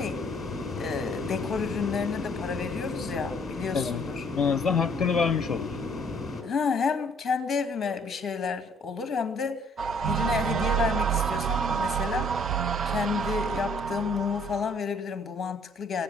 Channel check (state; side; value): normal; both; correlation 0.61